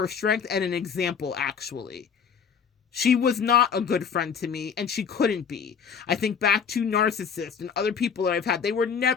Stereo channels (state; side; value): quieter; right; 6.8 dB